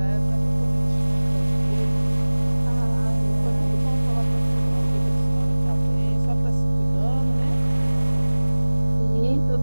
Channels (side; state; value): both; inverted; correlation -1.00